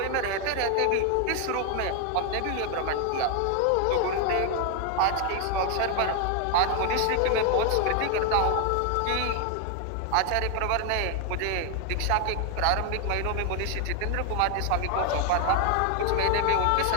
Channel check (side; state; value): both; different; correlation 0.00